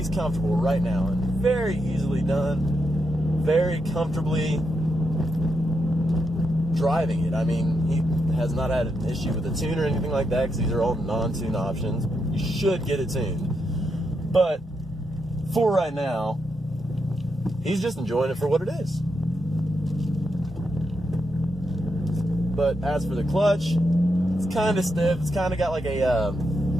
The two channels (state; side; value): normal; both; correlation 0.82